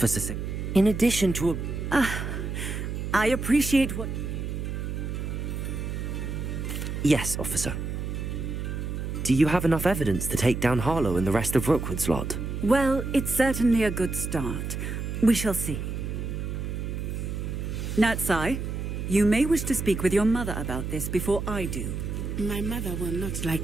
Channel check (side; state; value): right; noise; hum, 4 dB below the sound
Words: Singh, in addition to a... I appreciate what... Yes, Officer. Do you have enough evidence to take down Harlow and the rest of Rookwood's lot? Well, it's certainly a good start. We shall see. Natsai, you may wish to speak with your mother about this before I do. My mother will not like